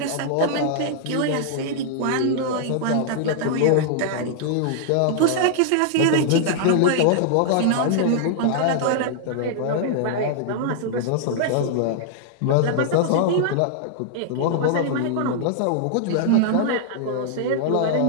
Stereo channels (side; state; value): both; different; correlation -0.01